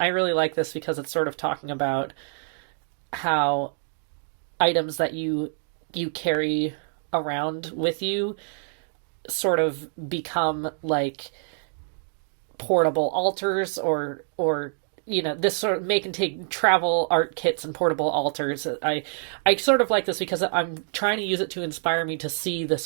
really like this because it's sort of talking about how items that you carry around with you sort of become like portable altars or this sort of make and take travel art kits and portable altars. I sort of like this because I'm trying to use it to inspire me to see this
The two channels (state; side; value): silent; left; digital silence